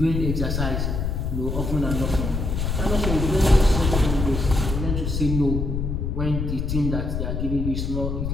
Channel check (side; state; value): left; noise; rumble, 1 dB below the sound